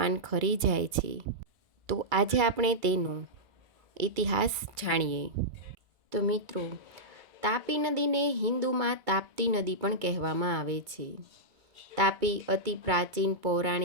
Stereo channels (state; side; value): late; left; 2.3 ms